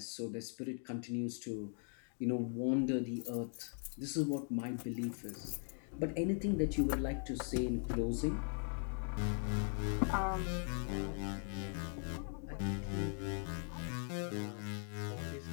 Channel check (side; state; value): right; silent; 51 dB below the other